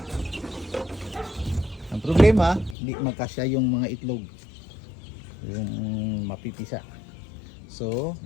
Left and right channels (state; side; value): drops out; right; at 2.8 s